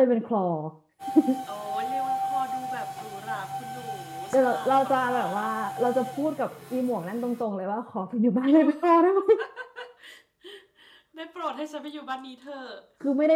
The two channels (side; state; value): both; identical; correlation 1.00